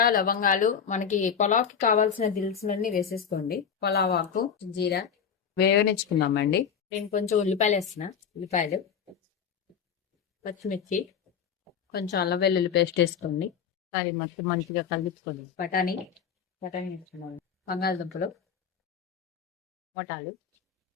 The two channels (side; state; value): right; quieter; 7.2 dB